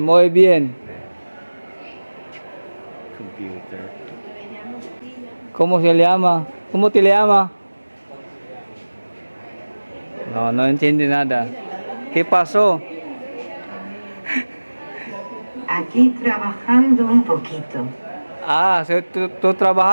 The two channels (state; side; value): inverted; both; correlation -1.00